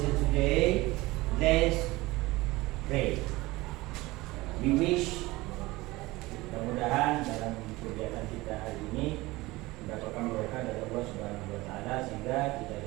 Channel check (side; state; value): left; quieter; 20.4 dB